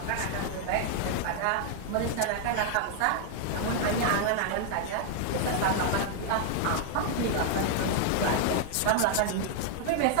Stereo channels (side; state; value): both; different; correlation 0.00